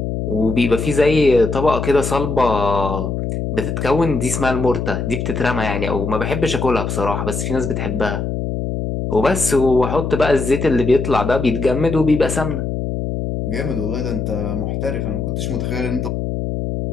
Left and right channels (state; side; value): noise; left; hum, 3 dB below the sound